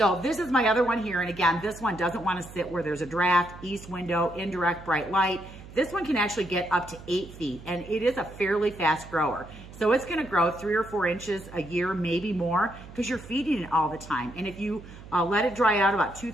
this is my other one here. And again, this one doesn't want to sit where there's a draft, east window, indirect bright light. This one can actually get up to 8 feet and it is a fairly fast grower. So it's going to grow 3 or 4 inches a year, maybe more, because you're feeding it all the time. And if you let it dry out about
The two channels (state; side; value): noise; right; hum, 17 dB below the sound